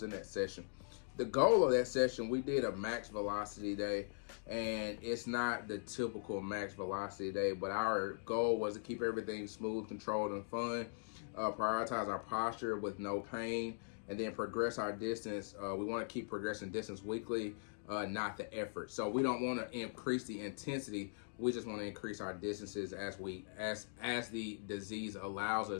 in that session. The goal of that session, we did a max velocity day, and it's not the typical max velocity day, but our goal was to keep everything smooth, controlled, and fun, prioritize our posture with no pain, and then progress our distance. We want to keep progressing distance weekly, not the effort. So we don't want to increase the intensity. We just want to increase our distances as the disease allows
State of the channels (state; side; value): silent; right; digital silence